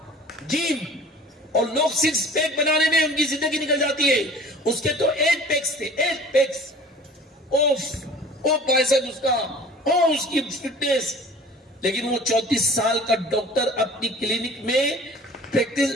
جیم، اور لوگ 6 پیک بنانے میں ان کی زندگی نکل جاتی ہے، اس کے تو 8 پیکس تھے، 8 پیکس، بائسپ اس کا، اس کی فٹنس، لیکن وہ 34 سال کا ڈاکٹر اپنی کلینک میں پریکٹس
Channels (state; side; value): normal; both; correlation 0.46